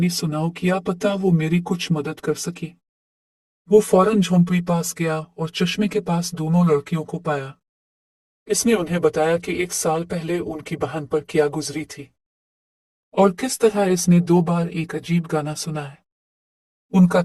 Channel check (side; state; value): both; identical; correlation 1.00